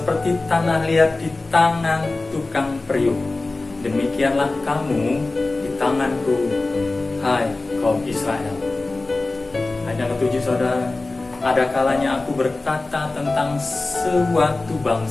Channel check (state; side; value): quieter; right; 3.2 dB